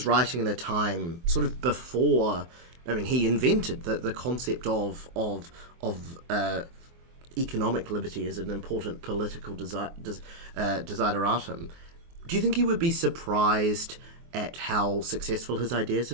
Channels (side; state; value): left; late; 24 ms